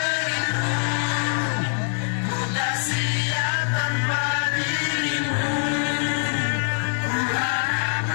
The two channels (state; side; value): silent; right; 63 dB below the other